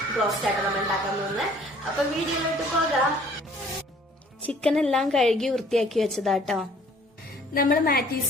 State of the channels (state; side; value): normal; both; correlation 0.56